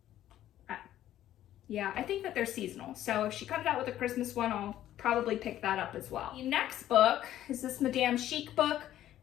Yeah, I think that they're seasonal. So if she comes out with a Christmas one, I'll probably pick that up as well. The next book is this Madame Chic book.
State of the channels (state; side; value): quieter; right; 12.6 dB